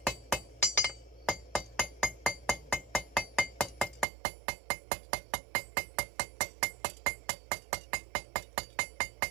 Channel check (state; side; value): drops out; left; at 4.0 s